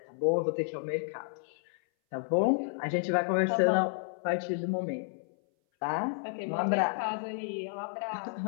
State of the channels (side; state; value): right; silent; 57 dB below the other